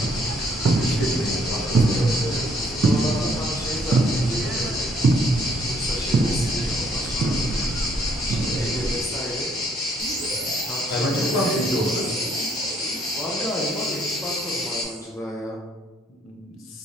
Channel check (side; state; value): both; normal; correlation 0.66